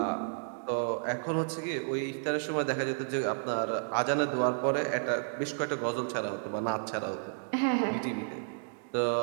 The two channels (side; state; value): left; silent; digital silence